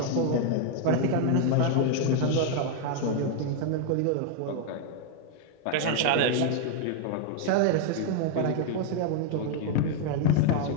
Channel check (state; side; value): different; both; correlation 0.00